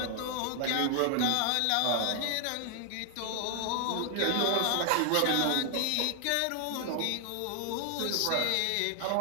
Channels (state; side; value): different; both; correlation 0.00